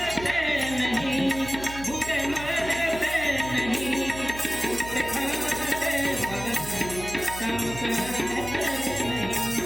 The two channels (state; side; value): noise; right; hum, 12 dB below the sound